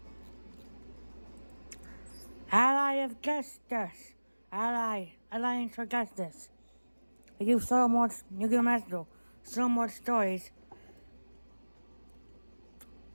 Ally of Justice, Alliance for Justice. We do so much Yugioh Master Duel, so much stories.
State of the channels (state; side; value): inverted; both; correlation -1.00